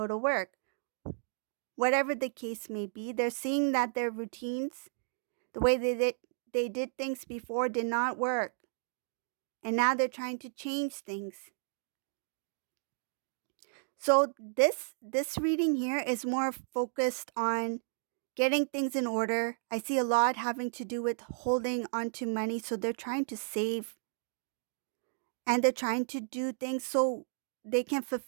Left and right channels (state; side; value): silent; left; digital silence